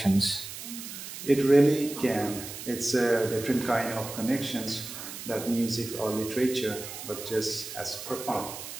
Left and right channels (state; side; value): noise; right; hiss, 10 dB below the sound